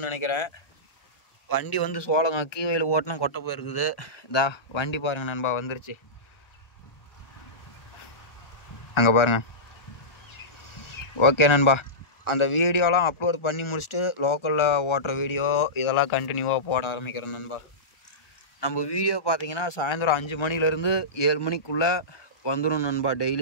நினைக்கிறேன். வண்டி வந்து சோளங்க கீவையில் ஓட்டினா கொட்டை போயிருக்குது. வண்டி பாருங்கள் நண்பா, வந்துருச்சு. அங்கே பாருங்கள். ஓகே நண்பா, அந்த வீடியோலாம் அப்லோட் பண்ணி முடிச்சுட்டு லோக்கலில் ஓட்டுற வீடியோ இதெல்லாம் கண்டினியூவாக போட ஆரம்பிக்கிறேன் நண்பா. நம்ம வீடியோ பார்த்தீங்கன்னா சாயந்தரம் 5 மணிலேருந்து 7 மணிக்குள்ளே வந்துடும் நண்பா.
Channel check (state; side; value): late; right; 1.4 ms